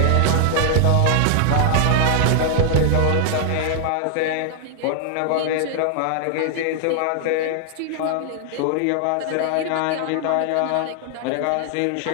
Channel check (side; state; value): both; different; correlation 0.00